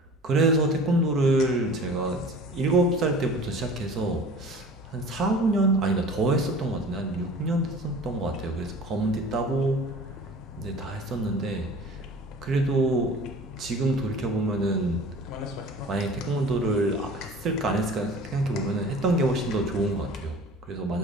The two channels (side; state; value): both; normal; correlation 0.43